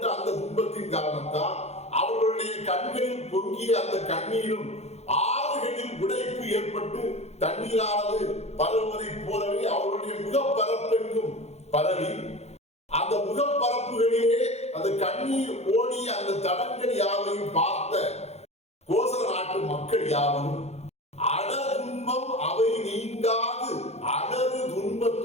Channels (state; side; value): late; right; 0.31 ms